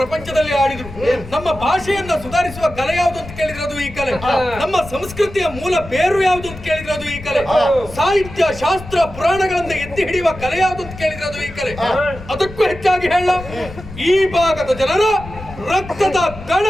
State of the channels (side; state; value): left; noise; rumble, 14 dB below the sound